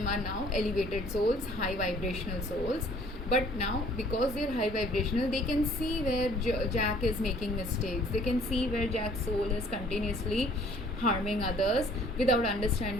are now elevated souls, high vibrational souls. But now, because they're high vibrational, they can see where Jack is making mistakes. They can see where Jack's soul is continuously harming others without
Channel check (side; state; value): both; normal; correlation 0.56